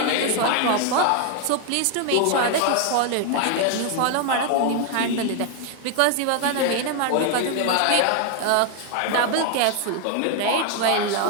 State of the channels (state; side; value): different; both; correlation 0.00